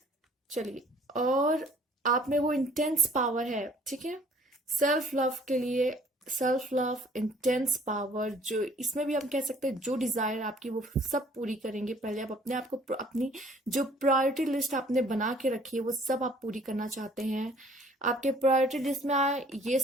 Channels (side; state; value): both; normal; correlation 0.56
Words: चलिए, और आप में वो इंटेंस पावर है, ठीक है, सेल्फ लव के लिए। सेल्फ लव, इंटेंस पावर, जो इसमें भी हम कह सकते हैं जो डिजायर आपकी वो सब पूरी करेंगे। पहले आप अपने आप को, अपनी जो प्रायोरिटी लिस्ट आपने बना के रखी है वो सब आप पूरी करना चाहते हैं। आपके प्रायोरिटी लिस्ट में ये